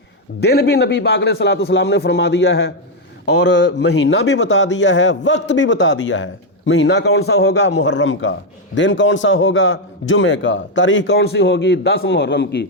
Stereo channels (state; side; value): normal; both; correlation 0.02